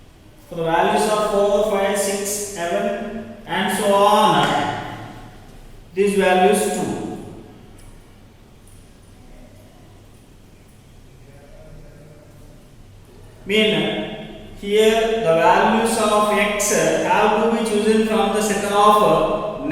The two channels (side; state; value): both; identical; correlation 1.00